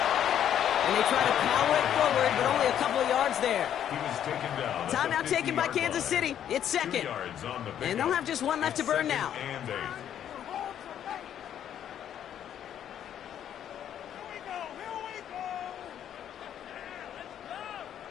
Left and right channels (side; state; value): right; quieter; 10.0 dB